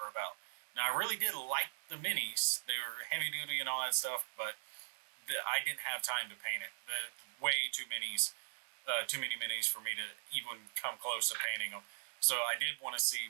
about. Now, I really did like the minis. They were heavy duty and all that stuff, but I didn't have time to paint it. Way too many minis for me to even come close to painting them. So I did want to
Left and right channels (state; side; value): silent; left; 51 dB below the other